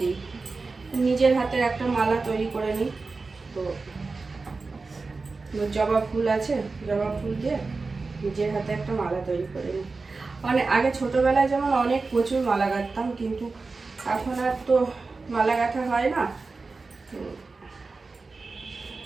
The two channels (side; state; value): left; quieter; 4.0 dB